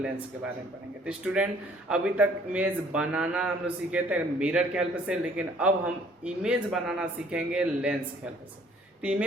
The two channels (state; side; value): normal; both; correlation 0.58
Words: के बारे में पढ़ेंगे। तो स्टूडेंट, अभी तक इमेज बनाना हम लोग सीखे थे मिरर के हेल्प से, लेकिन अब हम इमेज बनाना सीखेंगे लेंस के हेल्प से। तो